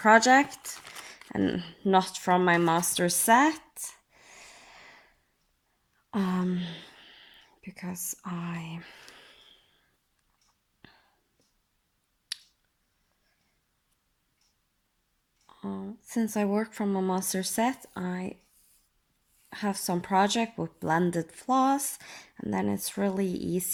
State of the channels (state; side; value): identical; both; correlation 1.00